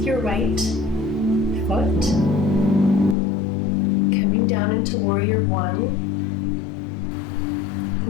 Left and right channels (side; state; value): right; drops out; at 3.2 s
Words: your right foot, coming down into Warrior One.